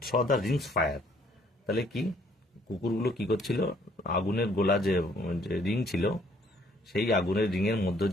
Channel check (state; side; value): normal; both; correlation 0.63